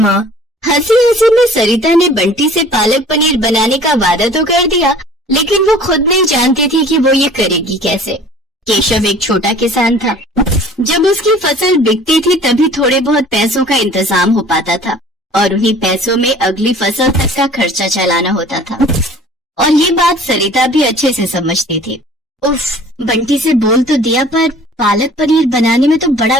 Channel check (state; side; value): normal; both; correlation 0.48